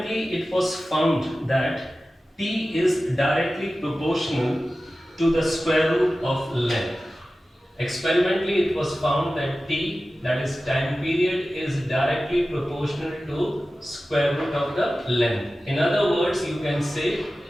it was found that T is directly proportional to the square root of length. Experimentally it was found that T, that is time period, is directly proportional to square root of the length. In other words, you can say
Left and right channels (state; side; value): normal; both; correlation 0.95